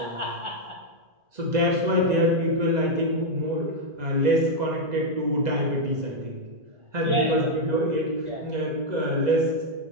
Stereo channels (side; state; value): left; late; 2.0 ms